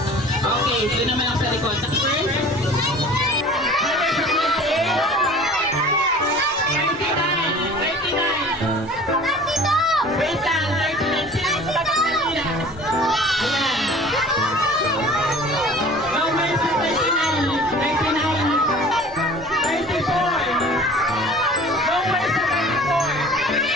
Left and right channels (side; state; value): left; noise; rumble, 28 dB below the sound